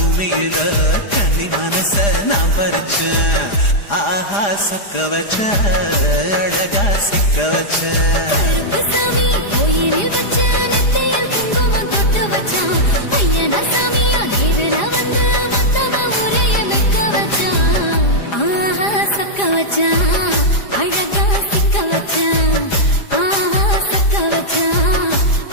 கன்னி மனச நான் பறிச்சேன் ஆஹா சொக்க வச்ச அழகா சிக்க வச்ச கருப்பு சாமி கோயிலில் வச்ச நெத்தியில் குங்குமம் தொட்டு வச்சான் ஐயனா சாமியா நேரில் வந்து மத்தவ உரைய வைக்க வச்சான் ஆஹா சொக்க வச்சான் அழகா சிக்க வச்சான் ஆஹா சொக்க வச்சான்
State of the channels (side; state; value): right; late; 4.9 ms